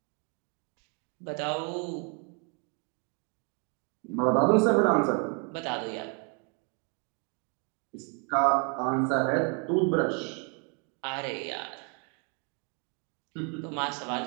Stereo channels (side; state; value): left; quieter; 36.2 dB